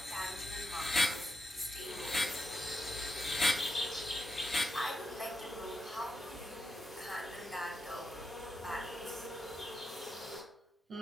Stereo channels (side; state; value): both; normal; correlation 0.86